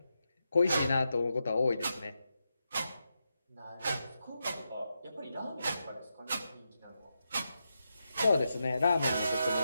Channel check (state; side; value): inverted; both; correlation -0.86